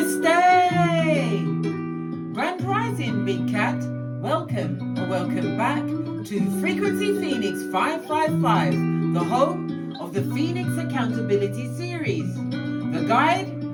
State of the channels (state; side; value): identical; both; correlation 1.00